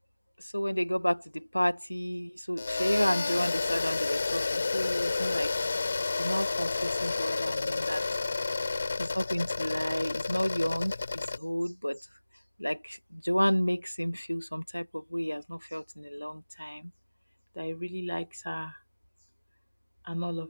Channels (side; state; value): both; inverted; correlation -0.98